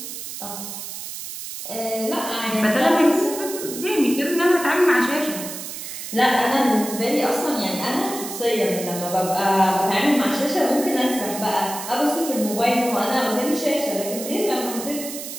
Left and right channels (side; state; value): right; noise; hiss, 9 dB below the sound